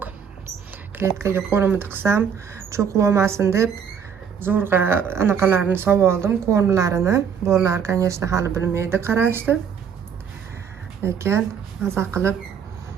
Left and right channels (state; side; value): quieter; left; 7.2 dB